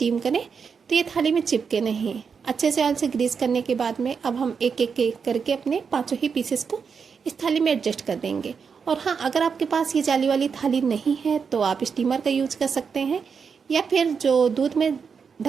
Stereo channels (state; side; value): quieter; left; 6.0 dB